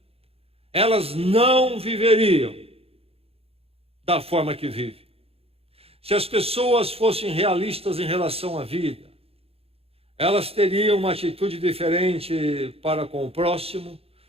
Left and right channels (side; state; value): left; late; 0.28 ms